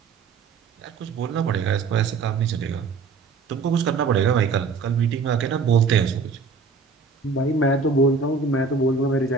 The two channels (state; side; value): quieter; left; 4.7 dB